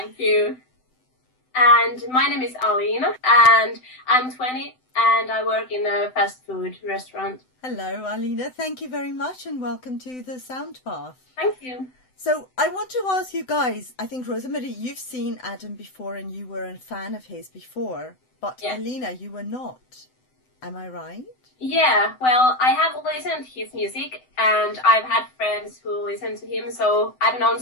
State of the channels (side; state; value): right; late; 7.9 ms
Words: you. And my name is Alina and I'm 20 and I work in a fast food restaurant. Hello, Alina. Thank you very much and welcome to the Sound Path. Thank you. So I want to ask you guys, I think, Rosamari, you've seen Adam before and you were a fan of his before, but Yeah. Alina, you were not. Am I right? Yeah, well, I have listened to his music and I've had friends who listen to him, so I've known